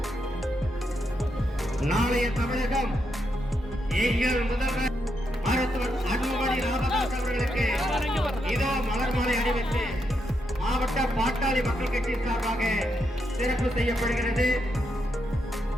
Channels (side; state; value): both; normal; correlation 0.81